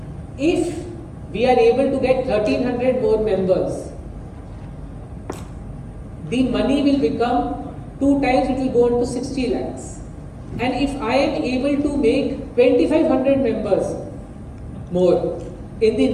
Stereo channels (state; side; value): identical; both; correlation 1.00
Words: If we are able to get 1,300 more members, the money will become 2 times, it will go on to 60 lakhs. And if I am able to make 2,500 members more in the